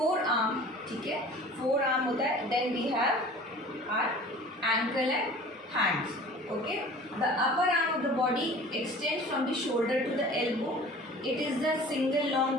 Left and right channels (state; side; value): normal; both; correlation 0.44